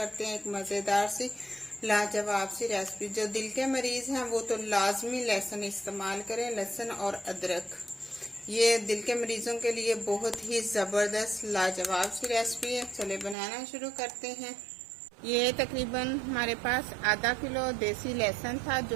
हैं एक मज़ेदार सी लाजवाब सी रेसिपी। जो दिल के मरीज हैं वो तो लाजमी लहसुन इस्तेमाल करें, लहसुन और अदरक। ये दिल के मरीजों के लिए बहुत ही ज़बरदस्त लाजवाब सी रेसिपी है। चले बनाना शुरू करते हैं। ये तकरीबन हमारे पास आधा किलो देसी लहसुन था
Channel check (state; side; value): drops out; left; at 13.4 s